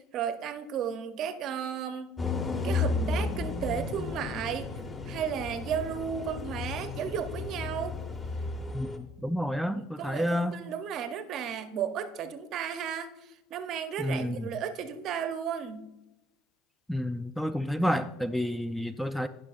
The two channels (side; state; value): both; normal; correlation 0.64